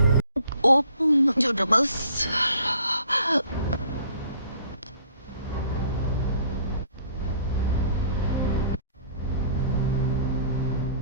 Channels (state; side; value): inverted; both; correlation -0.56